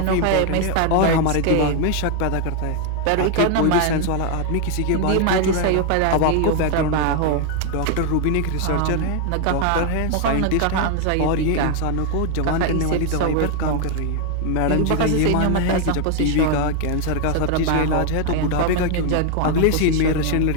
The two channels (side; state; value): both; different; correlation 0.00